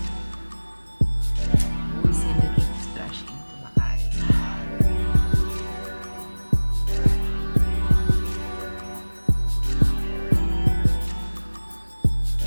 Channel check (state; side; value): inverted; both; correlation -1.00